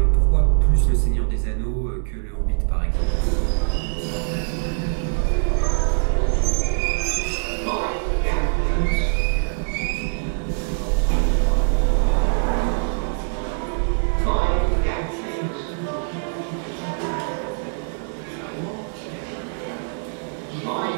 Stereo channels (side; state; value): left; silent; digital silence